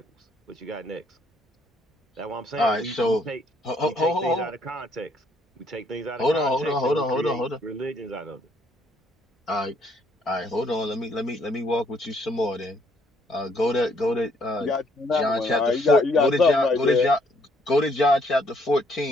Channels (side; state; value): both; normal; correlation 0.68